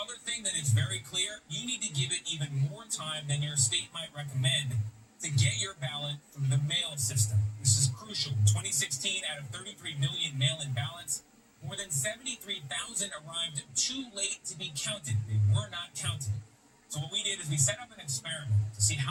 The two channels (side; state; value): both; identical; correlation 1.00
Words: thing that is very clear, you need to give it even more time than your state might recommend to get your ballot through the mail system. This is crucial. In 2016, out of 33 million mail-in ballots, more than 73,000 arrived too late to be counted. They were not counted. So what we did is we set up an experiment to see